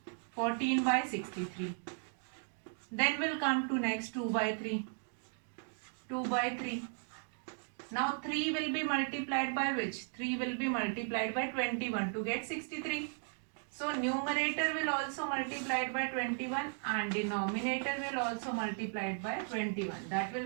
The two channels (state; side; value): silent; left; 54 dB below the other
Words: 14 by 63. Then we'll come to next 2 by 3. 2 by 3. Now 3 will be multiplied by which? 3 will be multiplied by 21 to get 63. So numerator will also multiplied by 21 and denominator will also multiplied by 21. That will